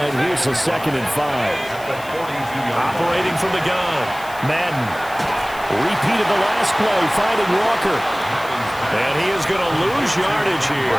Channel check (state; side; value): noise; left; hiss, 19 dB below the sound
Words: here's a 2nd and 5. Operating from the gun. Madden. Repeated the last play, finding Walker. And he is going to lose yardage